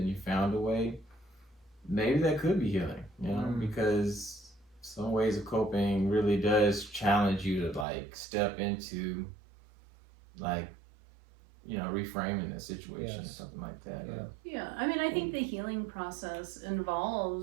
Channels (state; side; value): drops out; left; at 7.9 s